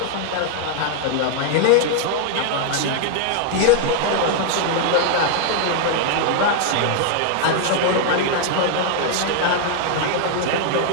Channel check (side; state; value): both; different; correlation 0.00